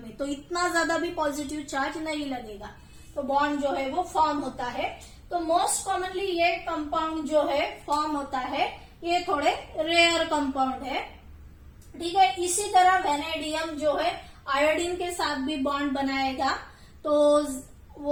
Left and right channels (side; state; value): both; identical; correlation 1.00